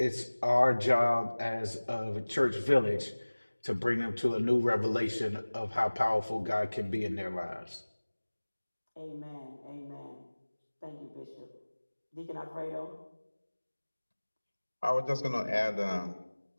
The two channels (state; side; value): inverted; both; correlation -1.00